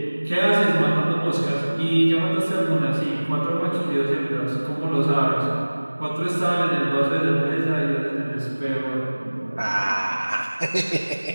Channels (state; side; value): inverted; both; correlation -1.00